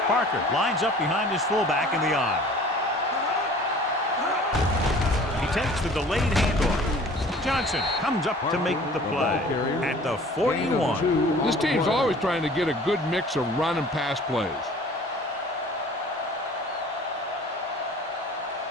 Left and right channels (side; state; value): both; normal; correlation 0.48